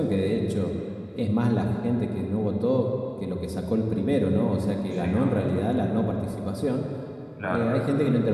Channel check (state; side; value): identical; both; correlation 1.00